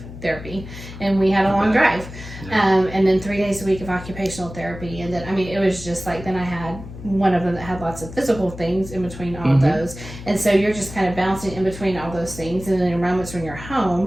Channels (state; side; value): noise; left; hum, 13 dB below the sound